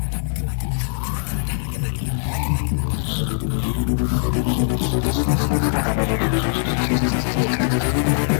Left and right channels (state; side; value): silent; right; digital silence